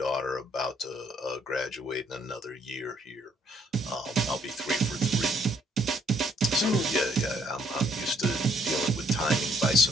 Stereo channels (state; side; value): normal; both; correlation 0.67